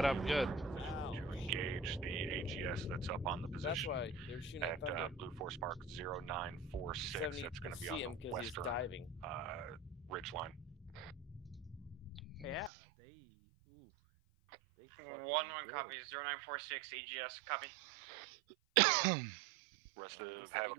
up good. To engage the AGS that's up on the position. That's why they're shooting at thunder. Blue Force Park 0946. That's going to be on the western ridge line. Yeah, they. Ooh. They fucking 1-1 good. copy. 0946 AGS copy. I guess the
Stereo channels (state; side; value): drops out; left; at 12.7 s